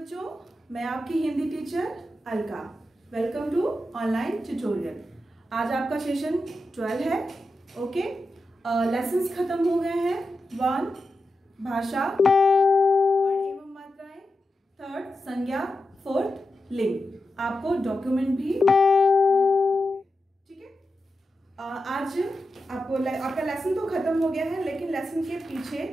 मैं आपकी Hindi teacher Alka. Welcome to online tutorial. आज आपका सेशन 12 है। ओके, लेसन्स खत्म हो गए हैं। 1 भाषा, वर्ण एवं मात्राएं, 3 संज्ञा, 4 लिंग। आपको डॉक्यूमेंट भी ठीक है। आज आपका लेसन तो खत्म हो गया है, लेकिन लेसन के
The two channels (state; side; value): normal; both; correlation 0.90